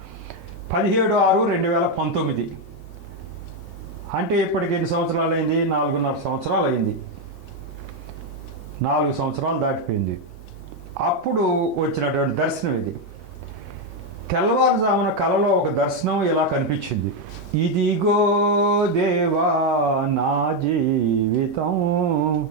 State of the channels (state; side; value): late; right; 1.3 ms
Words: 17/6/2019. అంటే ఇప్పటికి ఎన్ని సంవత్సరాలు అయింది? 4.5 సంవత్సరాలు అయింది. 4 సంవత్సరాలు దాటిపోయింది. అప్పుడు వచ్చినటువంటి దర్శనం ఇది. తెల్లవారుజామున కలలో ఒక దర్శనం ఇలా కనిపించింది. ఇదిగో దేవా నా జీవితం,